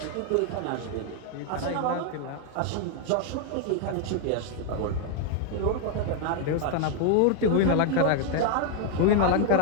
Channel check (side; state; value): both; different; correlation 0.00